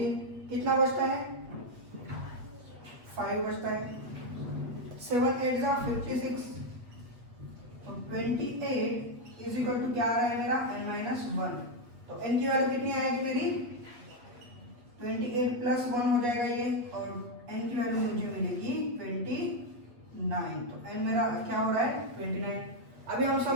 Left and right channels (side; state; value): left; late; 8.3 ms